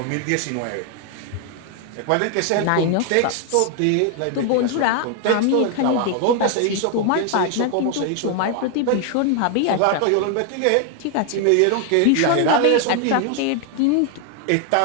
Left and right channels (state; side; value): different; both; correlation 0.00